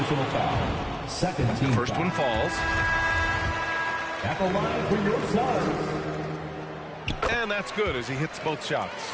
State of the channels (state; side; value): identical; both; correlation 1.00